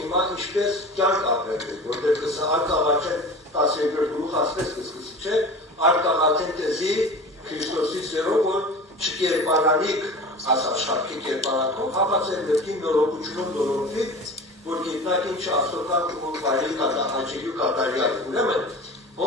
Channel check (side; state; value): both; normal; correlation 0.36